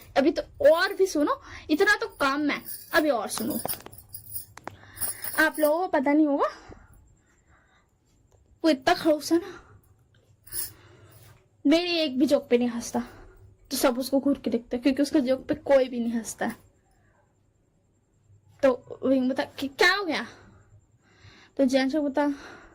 अभी तो और भी सुनो, इतना तो काम है, अभी और सुनो। आप लोगों को पता नहीं होगा वो इतना खड़ूस है ना, मेरी एक भी जोक पे नहीं हंसता, तो सब उसको घूर के देखते क्योंकि उसका जोक पे कोई भी नहीं हंसता है। तो विंग बता कि क्या हो गया। तो जैन बता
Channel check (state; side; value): identical; both; correlation 1.00